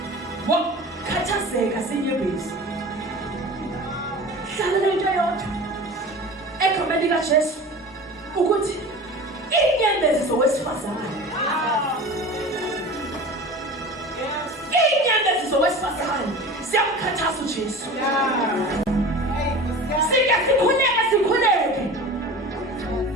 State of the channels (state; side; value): normal; both; correlation 0.35